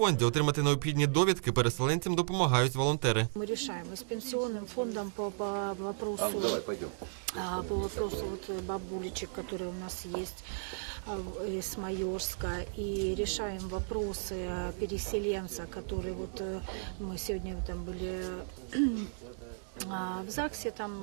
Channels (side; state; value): left; silent; digital silence